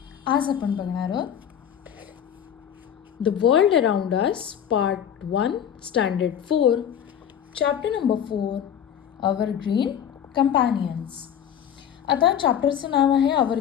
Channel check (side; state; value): right; quieter; 9.1 dB